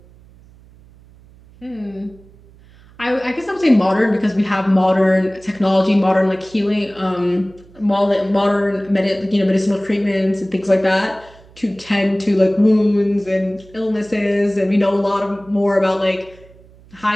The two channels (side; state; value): right; noise; hum, 25 dB below the sound